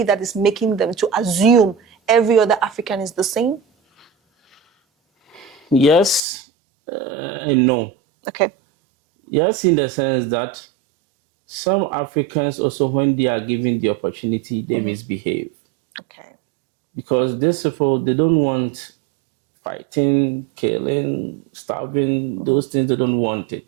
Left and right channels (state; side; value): drops out; left; at 6.2 s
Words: that is making them to assume every other African is the same? Yes and no. Okay. Yes, in the sense that some Africans also, when they are given the opportunity, they misbehave. Okay. Because these people, they don't want fighting, killing, starving, those things, they don't want